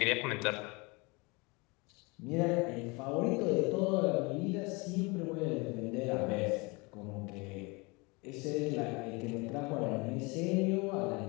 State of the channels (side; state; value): right; quieter; 27.3 dB